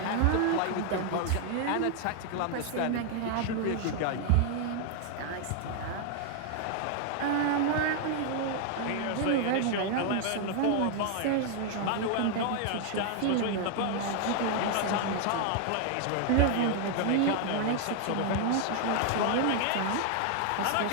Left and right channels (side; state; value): both; different; correlation 0.00